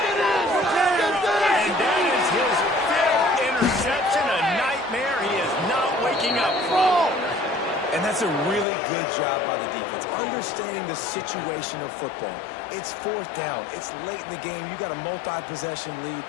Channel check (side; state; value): right; drops out; at 8.7 s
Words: And that is his 5th interception, a nightmare he is not waking up from. And that's That's a really good job by the defense, understanding the situation of football. It's fourth down. It's late in the game. You got a multi-possession lead.